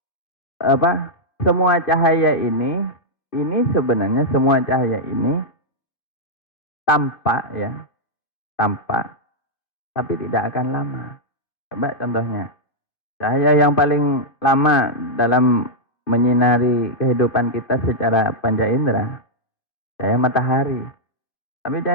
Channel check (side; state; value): right; late; 2.5 ms